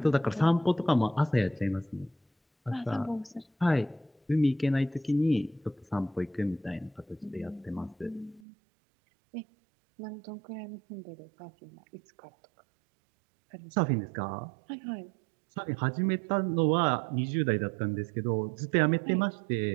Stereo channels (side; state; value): left; drops out; at 8.4 s